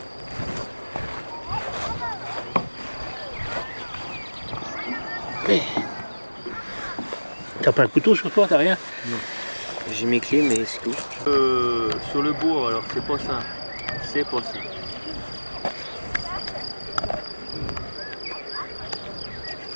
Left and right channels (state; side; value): inverted; both; correlation -1.00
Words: T'as pas un couteau sur toi, t'as rien? J'ai mes clés mais c'est tout. Sur le bourg, alors c'est pas ça. C'est pas ça.